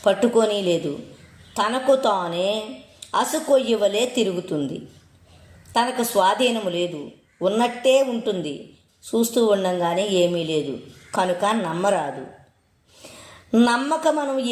పట్టుకొని లేదు. తనకు తానే అసుకొయ్యవలే తిరుగుతుంది. తనకు స్వాధీనము లేదు, ఉన్నట్టే ఉంటుంది. చూస్తూ ఉండంగానే ఏమీ లేదు కనుక నమ్మరాదు. నమ్మక మనం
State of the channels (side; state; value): both; identical; correlation 1.00